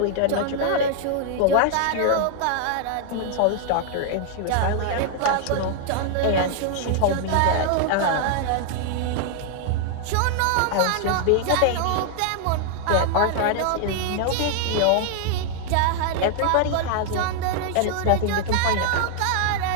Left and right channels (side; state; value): both; different; correlation 0.00